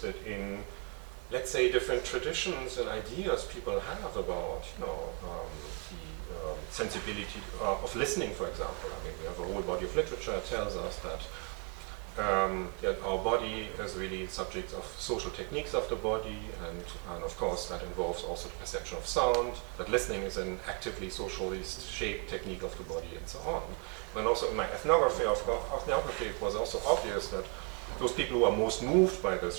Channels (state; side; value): quieter; left; 34.5 dB